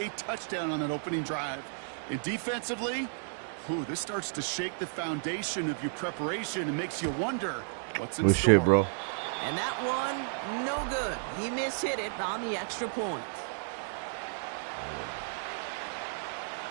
touchdown on that opening drive. And defensively, this starts to shake the foundation of your preparation and makes you wonder what's in store. Shit, bro. And that one, no good. He mishit it on the extra point.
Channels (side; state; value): left; silent; digital silence